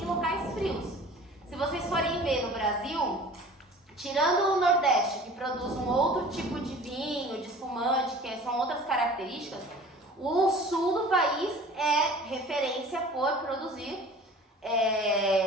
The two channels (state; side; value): normal; both; correlation 0.44